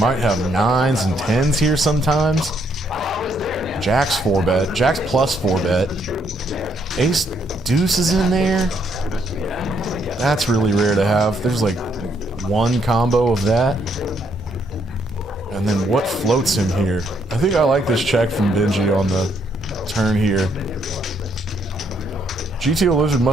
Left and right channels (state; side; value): normal; both; correlation 0.72